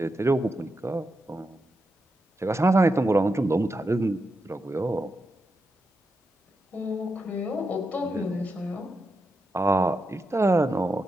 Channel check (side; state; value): both; normal; correlation 0.86